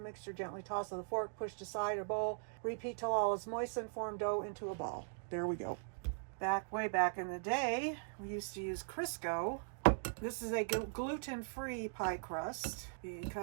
mixture. Gently toss with a fork. Push to side or bowl. Repeat till all is moistened. Form dough into a ball. There we go. Way back in the day, we used to use Crisco. This is a gluten-free pie crust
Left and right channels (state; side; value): silent; left; digital silence